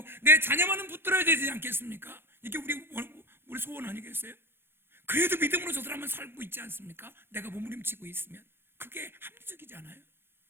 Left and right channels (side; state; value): left; late; 0.11 ms